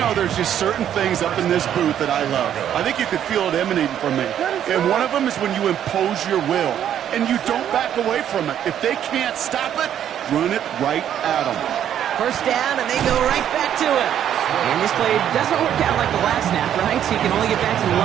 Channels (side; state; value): left; quieter; 10.1 dB